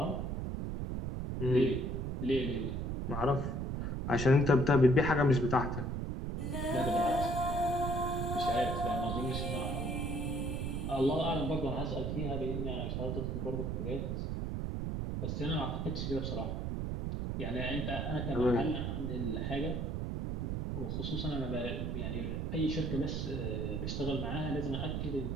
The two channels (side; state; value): right; noise; rumble, 2 dB below the sound